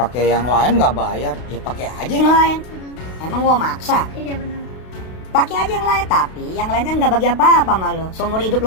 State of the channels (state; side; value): late; right; 32 ms